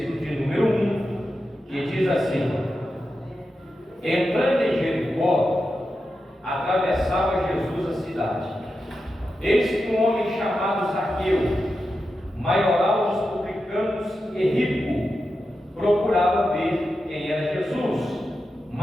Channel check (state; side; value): normal; both; correlation 0.89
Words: de número 1, que diz assim: entrando em Jericó, atravessava Jesus a cidade. Eis que um homem chamado Zaqueu, maioral dos publicanos e rico, procurava ver quem era Jesus,